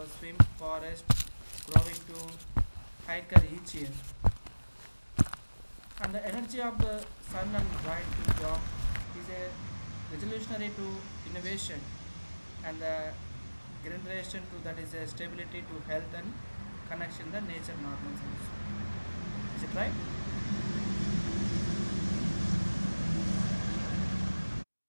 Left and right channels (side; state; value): both; inverted; correlation -1.00